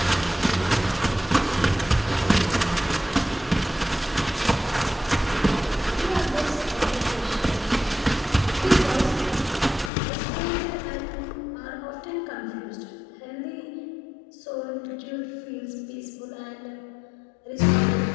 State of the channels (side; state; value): right; drops out; at 9.9 s